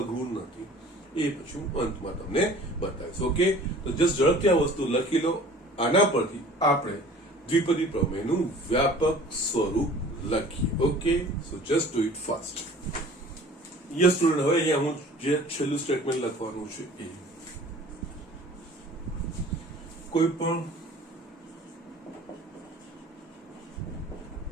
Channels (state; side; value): normal; both; correlation 0.47